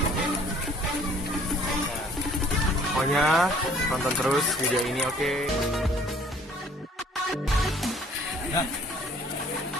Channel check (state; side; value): normal; both; correlation 0.56